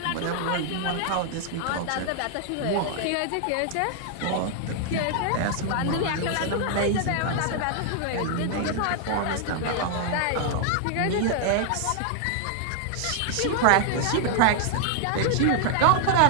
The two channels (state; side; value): different; both; correlation 0.00